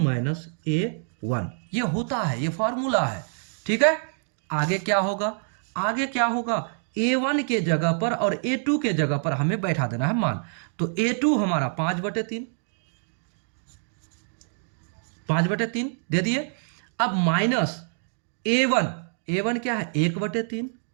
A1, ये होता है, ये फॉर्मूला है, ठीक है। आगे क्या होगा? आगे क्या होगा? A1 के जगह पर और A2 के जगह पर हमें बैठा देना है मान। तो A2 हमारा 5/3, 5/3 दे दिए। अब माइनस A1, A1 क्या है 1/3,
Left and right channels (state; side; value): silent; left; 61 dB below the other